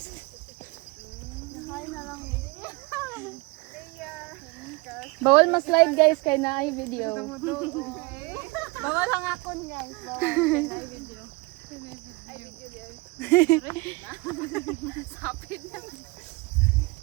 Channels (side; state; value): left; quieter; 24.9 dB